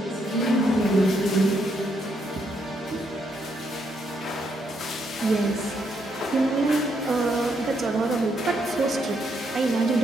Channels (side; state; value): both; normal; correlation 0.76